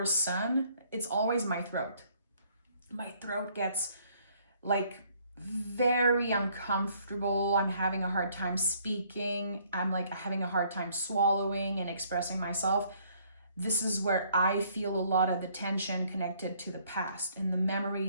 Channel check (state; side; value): inverted; both; correlation -0.63